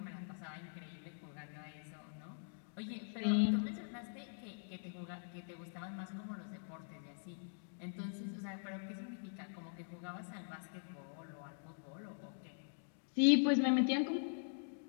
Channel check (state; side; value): silent; right; digital silence